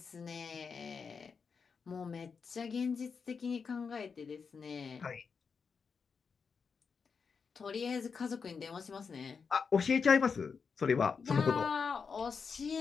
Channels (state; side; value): quieter; right; 5.6 dB